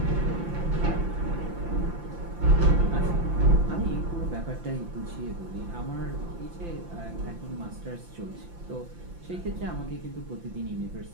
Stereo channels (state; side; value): late; left; 5.8 ms